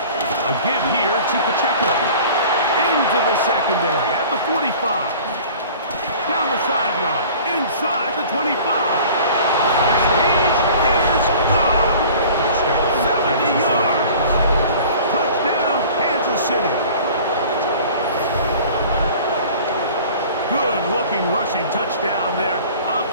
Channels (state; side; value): inverted; both; correlation -0.45